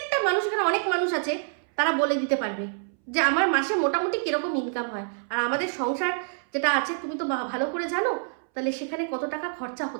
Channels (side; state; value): left; silent; 60 dB below the other